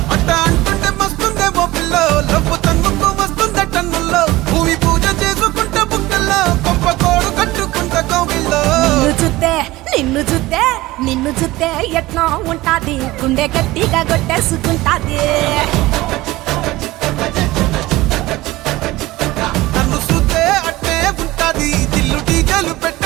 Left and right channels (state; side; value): quieter; left; 18.7 dB